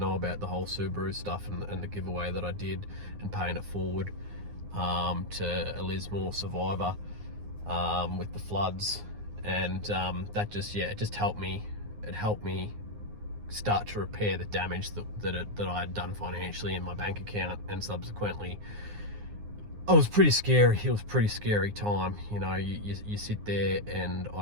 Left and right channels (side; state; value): left; late; 9.6 ms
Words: about the whole Subaru stuff and the giveaway that I did, and paying it forward to a Lismore survivor with the floods. And that just, yeah, it just helped me. It helped me start to repair the damage that I had done financially in my bank account. And subsequently, it was pretty scary. It was a pretty scary time. You know, you sit there and